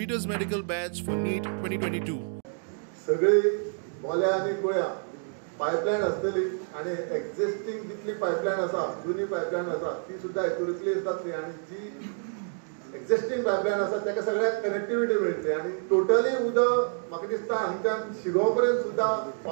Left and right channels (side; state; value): left; silent; 58 dB below the other